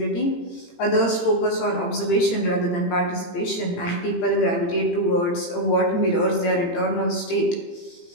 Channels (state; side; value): late; right; 18 ms